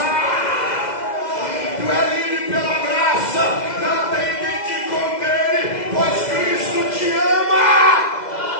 Tu é livre pela graça, não tem quem te condene, pois Cristo te ama.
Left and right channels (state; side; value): late; right; 2.0 ms